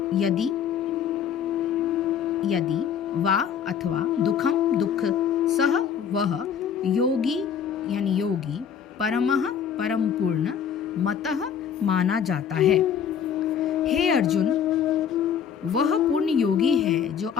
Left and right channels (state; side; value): quieter; right; 7.9 dB